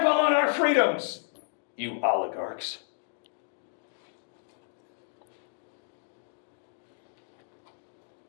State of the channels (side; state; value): right; silent; digital silence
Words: on our freedoms, you oligarchs.